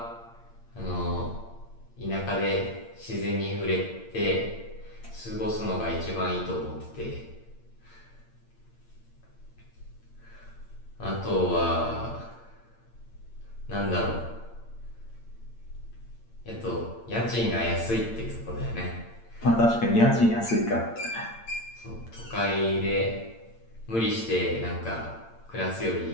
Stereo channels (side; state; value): right; late; 8.8 ms